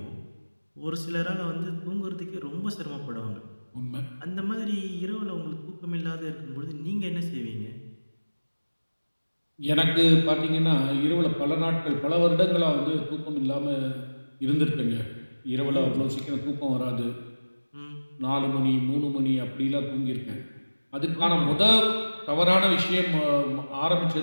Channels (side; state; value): both; inverted; correlation -1.00